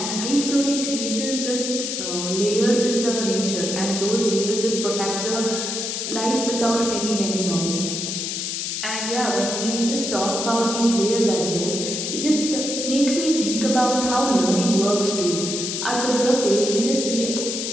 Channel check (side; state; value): left; noise; hiss, 3 dB below the sound